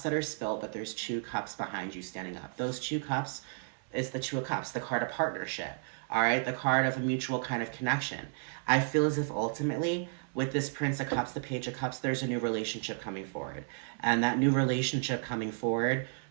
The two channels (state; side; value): silent; left; 56 dB below the other